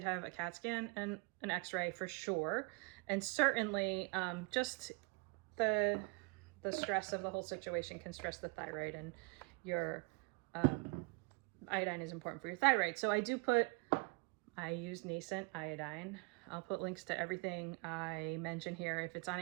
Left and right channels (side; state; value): left; quieter; 30.7 dB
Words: have a CAT scan and an x-ray for sure. And certainly just the stress of the whole situation can stress the thyroid, and your iodine is important for your thyroid. So I use nascent iodine. I'll put links to everything I mention here. If it's on